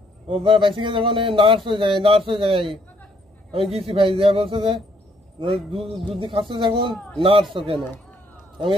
ও বাইসি গেছে, যখন নার্স হয়ে যায়। আমি গেছি ভাই, যা বলছে যে দুধ খাচ্ছে যখন নার্স কেন, আমি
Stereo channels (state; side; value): normal; both; correlation 0.68